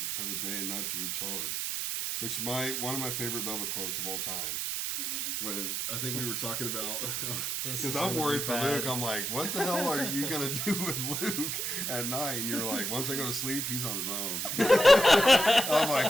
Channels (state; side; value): noise; right; hiss, 1 dB below the sound